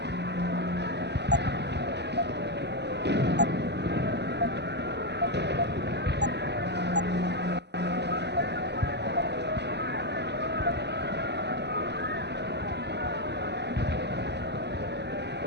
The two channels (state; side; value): late; left; 0.50 ms